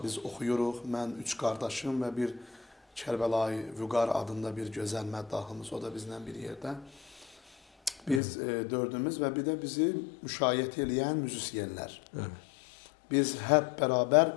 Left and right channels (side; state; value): right; drops out; at 8.2 s